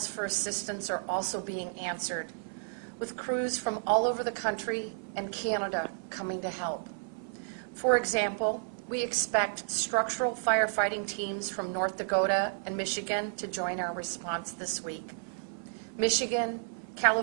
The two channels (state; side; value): silent; left; 57 dB below the other